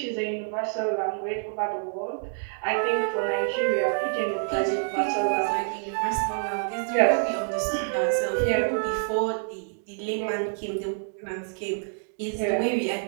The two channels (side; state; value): left; silent; digital silence